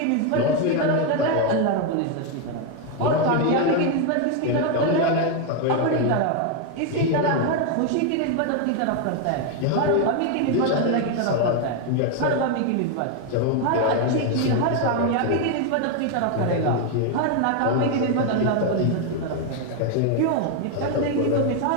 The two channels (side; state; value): both; different; correlation 0.01